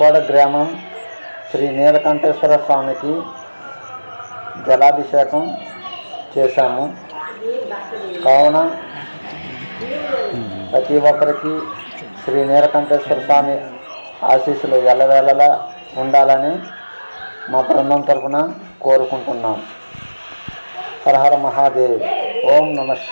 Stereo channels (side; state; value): both; inverted; correlation -1.00